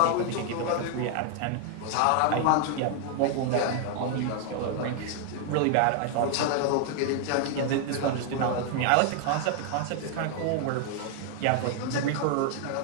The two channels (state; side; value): different; both; correlation 0.00